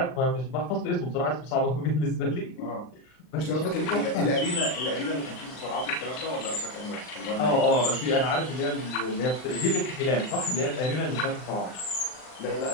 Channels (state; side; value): late; right; 39 ms